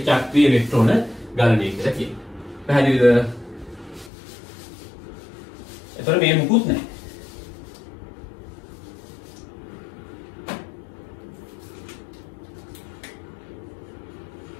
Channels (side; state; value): right; drops out; at 4.1 s